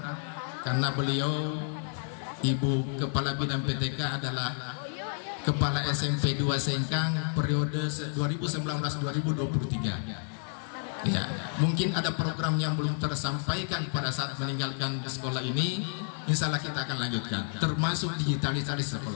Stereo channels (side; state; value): right; silent; digital silence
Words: karena beliau Ibu Kepala Bidang PTK adalah Kepala SMP 2 Sengkang periode 2019-2023. Ya, mungkin ada program yang belum tersampaikan pada saat meninggalkan sekolah ini. Insya Allah kita akan lanjutkan, termasuk digitalisasi